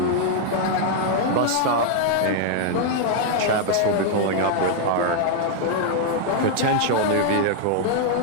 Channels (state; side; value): different; both; correlation 0.00